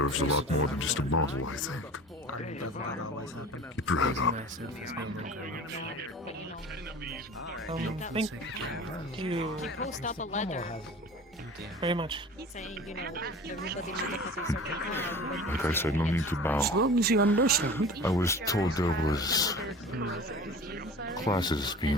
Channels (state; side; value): normal; both; correlation 0.39